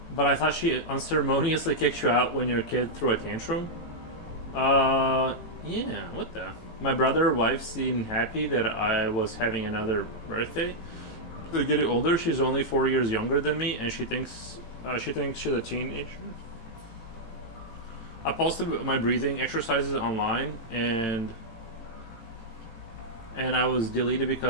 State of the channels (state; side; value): late; right; 18 ms